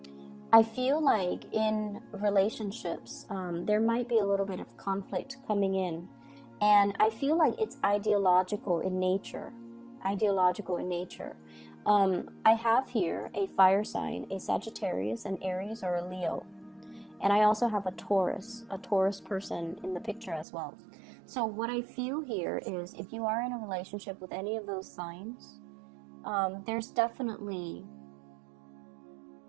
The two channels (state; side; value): drops out; left; at 20.5 s